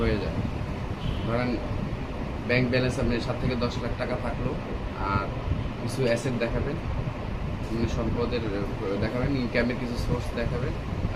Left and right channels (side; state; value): both; identical; correlation 1.00